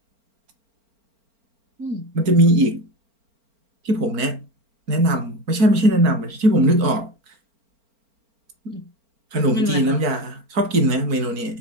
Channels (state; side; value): late; left; 4.4 ms